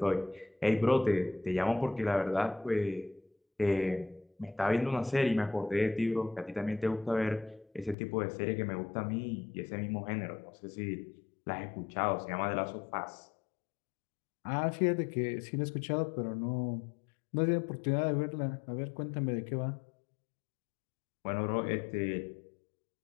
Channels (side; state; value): right; drops out; at 8.0 s